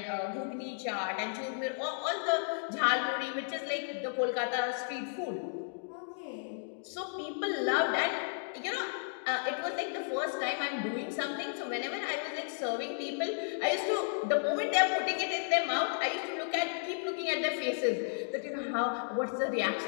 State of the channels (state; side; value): silent; right; digital silence